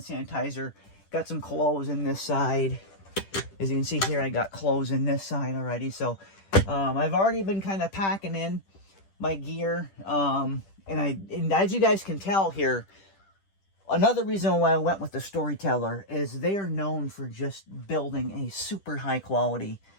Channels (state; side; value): late; right; 10 ms